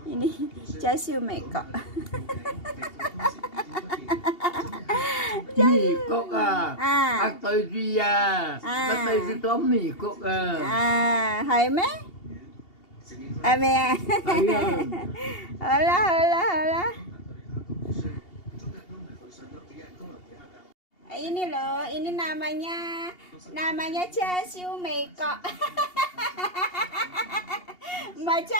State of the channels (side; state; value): right; late; 2.8 ms